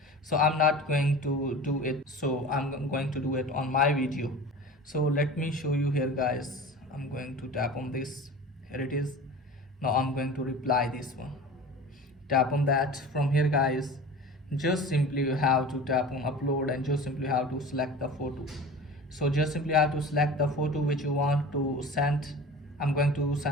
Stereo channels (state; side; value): normal; both; correlation 0.36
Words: So I'm not going to do it, so I'm going to do it on my video. So let me show you here guys. I'm going to tap on this. Here it is. Now I'm going to reply this one. Tap on that. From here guys, just simply you have to tap on upload, and just simply have to select the photo. So just simply have to select the photo which you want to send. I'm going to